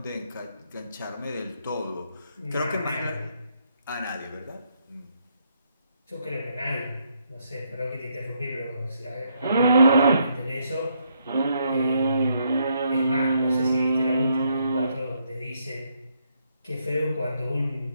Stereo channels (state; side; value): inverted; both; correlation -0.75